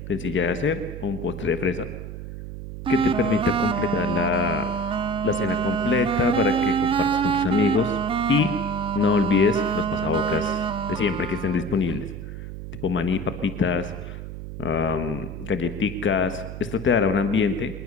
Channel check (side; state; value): right; noise; hum, 10 dB below the sound